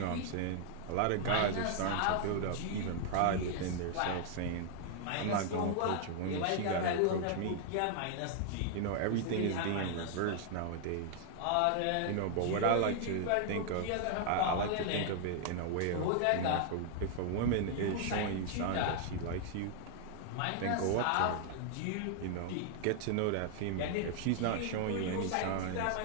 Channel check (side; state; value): both; different; correlation 0.00